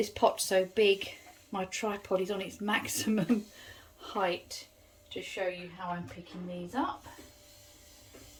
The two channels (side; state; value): both; identical; correlation 1.00